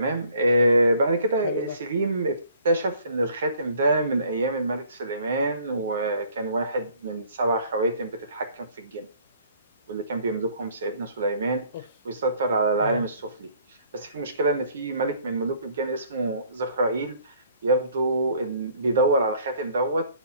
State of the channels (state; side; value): inverted; both; correlation -0.58